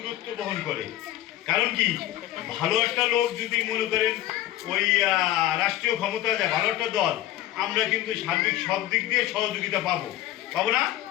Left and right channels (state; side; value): quieter; right; 14.0 dB